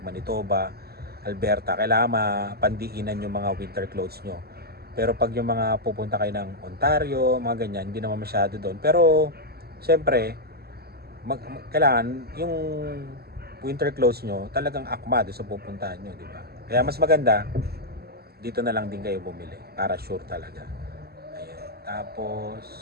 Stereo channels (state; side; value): late; left; 0.46 ms